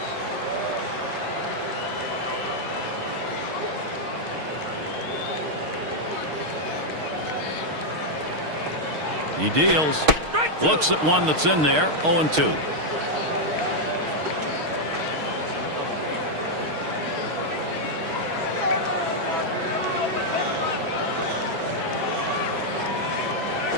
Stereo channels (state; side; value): late; left; 6.5 ms